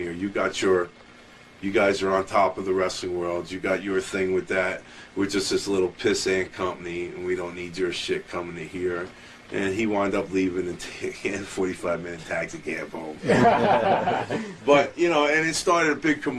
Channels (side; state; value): both; identical; correlation 1.00